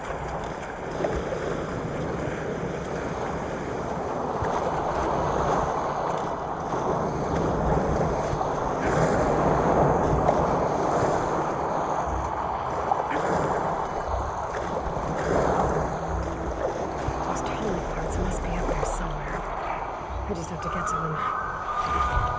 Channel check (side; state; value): both; identical; correlation 1.00